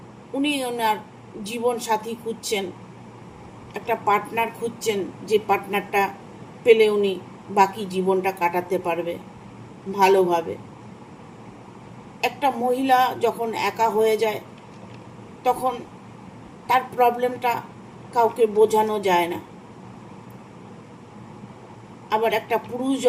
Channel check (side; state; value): both; identical; correlation 1.00